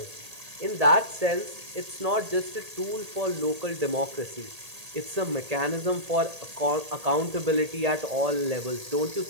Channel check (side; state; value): left; late; 1.8 ms